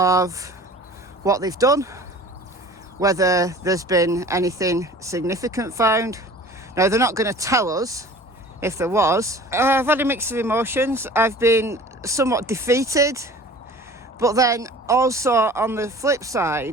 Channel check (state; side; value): normal; both; correlation 0.44